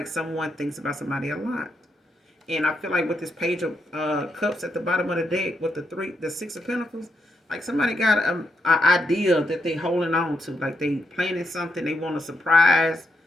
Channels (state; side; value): normal; both; correlation 0.81